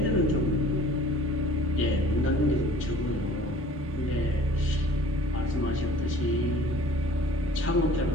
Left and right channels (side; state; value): both; normal; correlation 0.49